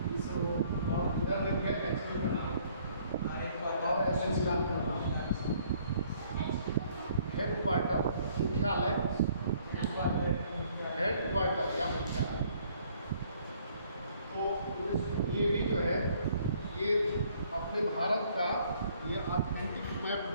और इधर लिख गया HQ का नाम और एसोसिएशन का नाम, हेडक्वार्टर मुख्यालय, हेडक्वार्टर या मुख्यालय। तो ये भी जो है ये अपने भारत का ये ऑथेंटिक मैप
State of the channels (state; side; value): inverted; both; correlation -0.62